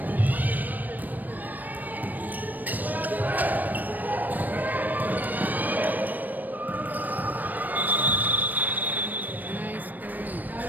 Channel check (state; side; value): late; left; 0.086 ms